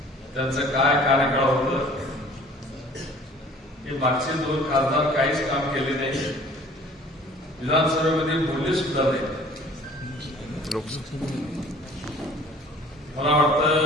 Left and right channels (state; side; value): normal; both; correlation 0.50